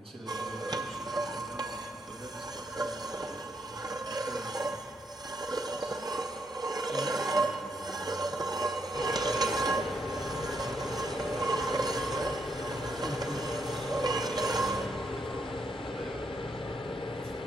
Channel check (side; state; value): both; normal; correlation 0.77